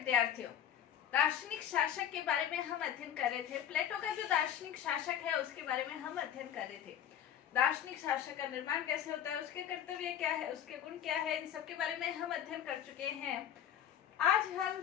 दार्शनिक शासक के बारे में हम अध्ययन कर रहे थे। प्लेटो का जो दार्शनिक शासक है उसके बारे में हम अध्ययन कर रहे थे। दार्शनिक शासक का निर्माण कैसे होता है, उसके कर्तव्य क्या है, उसके गुण क्या है, इन सब के बारे में हम अध्ययन कर चुके हैं। आज हम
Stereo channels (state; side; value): quieter; right; 10.0 dB